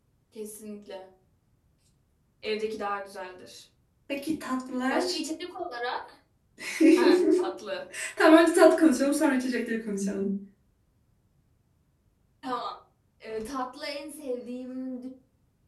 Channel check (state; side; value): identical; both; correlation 1.00